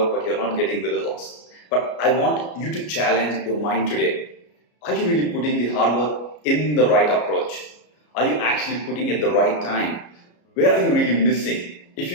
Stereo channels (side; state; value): right; late; 33 ms